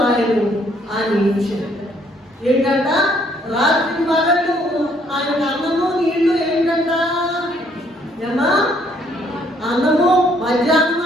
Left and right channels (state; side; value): normal; both; correlation 0.66